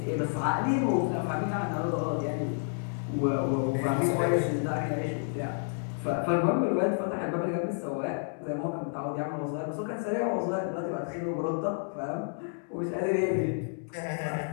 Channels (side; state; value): right; silent; digital silence